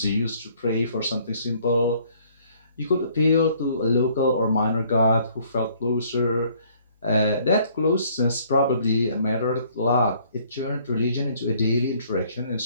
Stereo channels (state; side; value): inverted; both; correlation -0.61